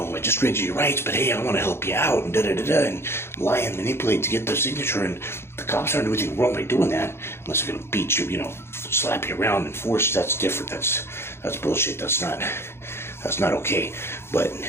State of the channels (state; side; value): late; right; 0.12 ms